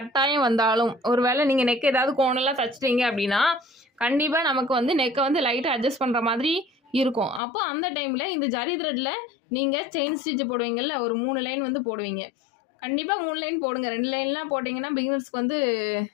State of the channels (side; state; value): right; drops out; at 7.4 s